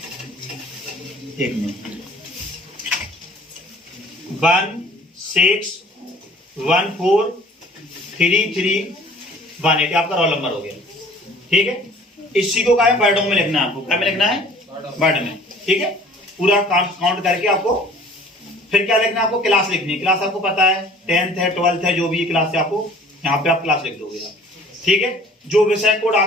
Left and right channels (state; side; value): normal; both; correlation 0.51